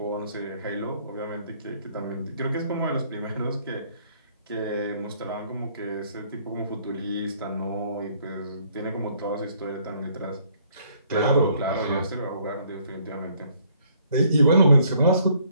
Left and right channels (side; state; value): both; inverted; correlation -0.64